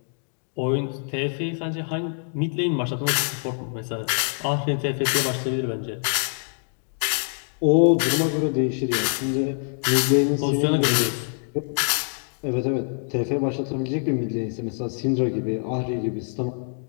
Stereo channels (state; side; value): silent; right; digital silence